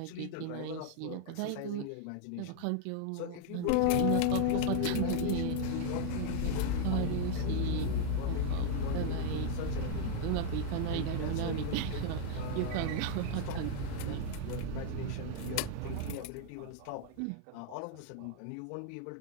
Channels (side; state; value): both; different; correlation 0.00